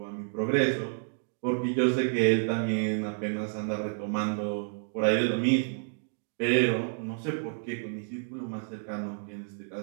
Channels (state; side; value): silent; left; digital silence